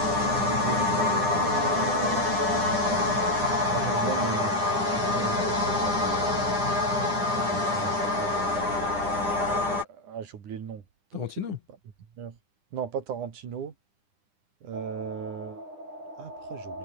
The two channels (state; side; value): late; left; 9.9 ms